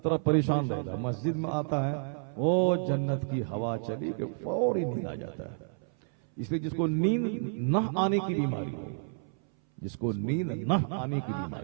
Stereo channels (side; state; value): left; silent; 58 dB below the other